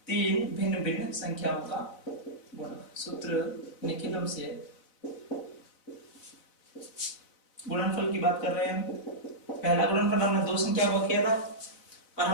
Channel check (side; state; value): right; late; 4.0 ms